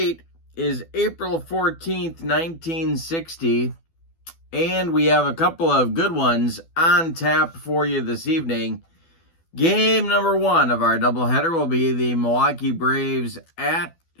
is April 14th, 1960. And we have a couple of good ones on tap for you this evening. Game number one of our doubleheader will be the Milwaukee Braves at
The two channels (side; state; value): right; late; 12 ms